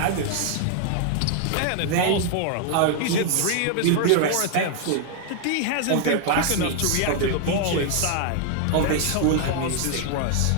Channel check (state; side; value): different; both; correlation 0.00